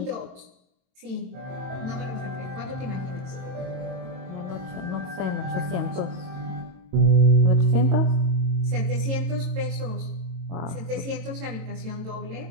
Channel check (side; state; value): left; late; 22 ms